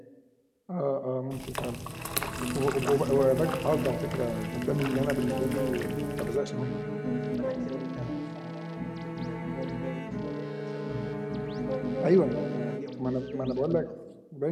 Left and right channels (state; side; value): identical; both; correlation 1.00